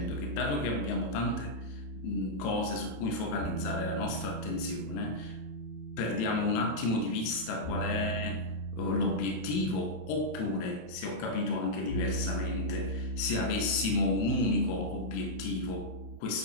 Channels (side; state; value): right; late; 27 ms